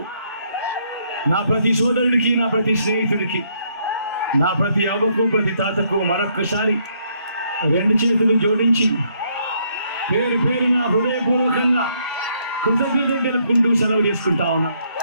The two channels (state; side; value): inverted; both; correlation -0.71